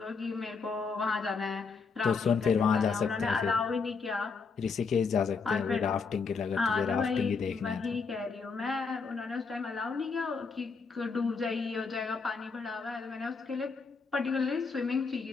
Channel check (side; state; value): right; quieter; 5.0 dB